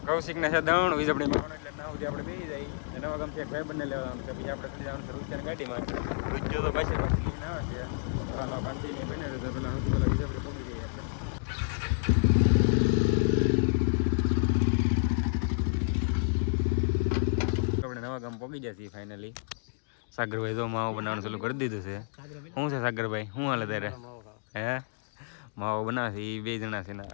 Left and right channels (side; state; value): right; silent; digital silence